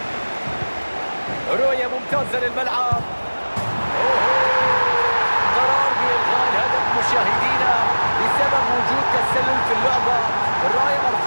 رؤية ممتازة للملعب. قرار بإلغاء الهدف مشاهدينا بسبب وجود تسلل في اللعبة. الراية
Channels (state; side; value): inverted; both; correlation -1.00